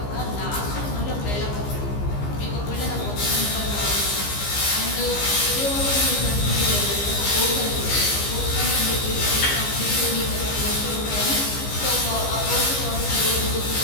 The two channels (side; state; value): right; late; 15 ms